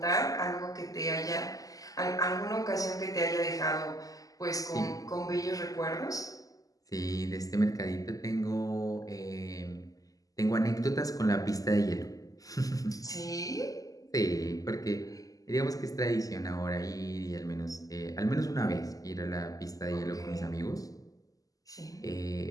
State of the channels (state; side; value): late; right; 0.17 ms